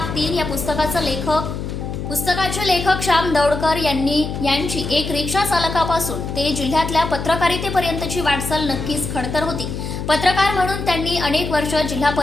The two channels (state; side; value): noise; left; hum, 5 dB below the sound